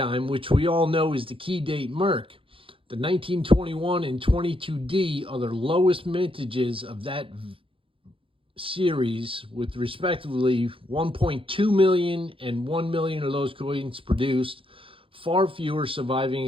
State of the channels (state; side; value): late; left; 0.26 ms